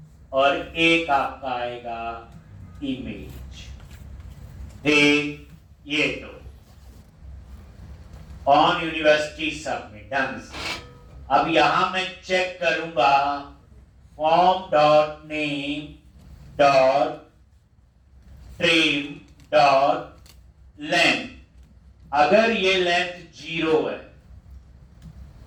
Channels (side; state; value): both; identical; correlation 1.00